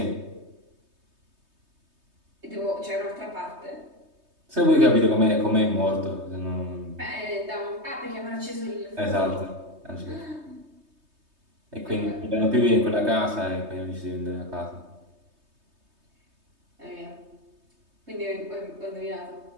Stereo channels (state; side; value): late; left; 3.2 ms